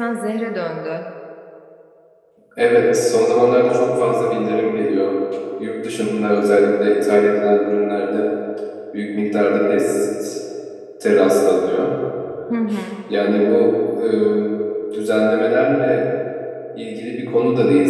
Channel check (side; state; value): both; identical; correlation 1.00